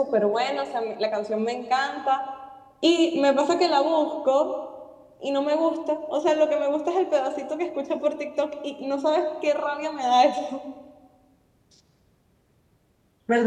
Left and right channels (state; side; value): identical; both; correlation 1.00